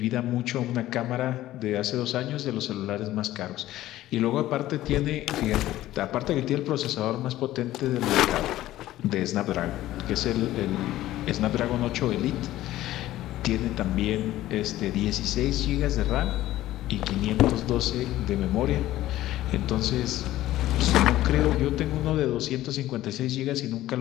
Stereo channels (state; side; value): quieter; right; 14.9 dB